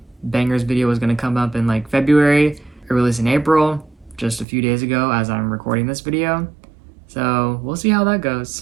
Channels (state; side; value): drops out; left; at 4.5 s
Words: Bangers video was going to come up in like February, or released in April, just a few days ago as I'm recording this video. So we'll see how that